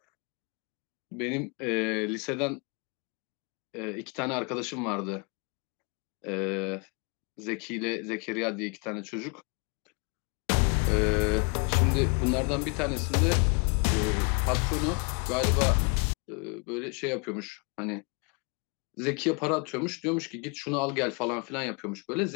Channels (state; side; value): quieter; right; 34.8 dB